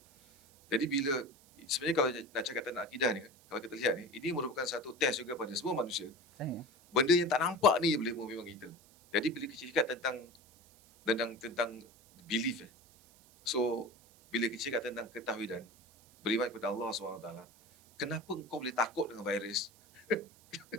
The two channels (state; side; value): noise; right; hiss, 26 dB below the sound